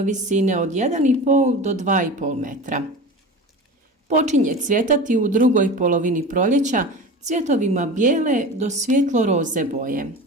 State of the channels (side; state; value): both; normal; correlation 0.32